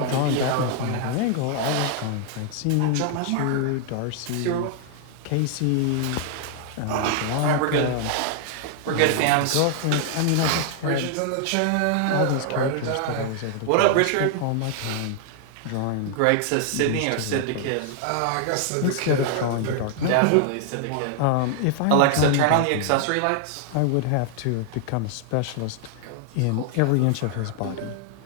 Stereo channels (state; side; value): different; both; correlation 0.00